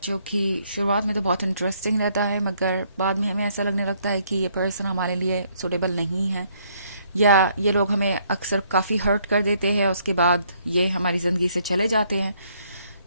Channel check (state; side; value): inverted; both; correlation -0.68